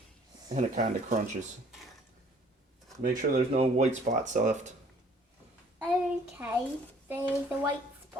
And it kind of crunches. Make sure there's no white spots left. Okay, there's a white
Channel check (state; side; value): normal; both; correlation 0.57